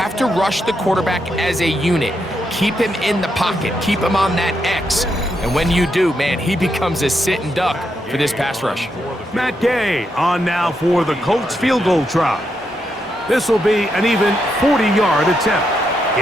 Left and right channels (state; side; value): normal; both; correlation 0.81